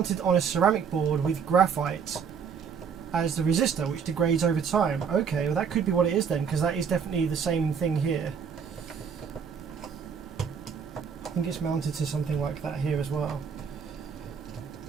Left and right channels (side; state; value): left; quieter; 6.7 dB